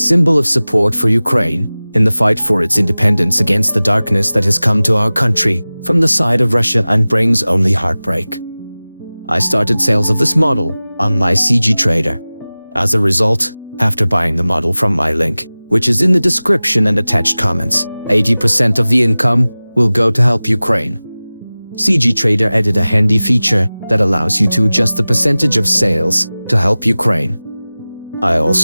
of support for Ukraine in the fight for its independence against the darkness that has come to our country from the side of Russia and brings only heartbreak. I started sales of this model on my CGTrader. As a result, after buying the model from my link, which is in the description and attached comments, 80% of the income will go to help Ukraine. CGTrader added a handy feature that allows you to adjust the percentage of sales to help Ukraine. I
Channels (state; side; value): inverted; both; correlation -0.98